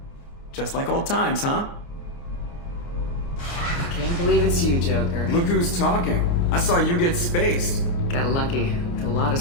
Just like old times, huh? I can't believe it's you, Joker. Look who's talking. I saw you get spaced. Got lucky, with a lot of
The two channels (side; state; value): right; late; 29 ms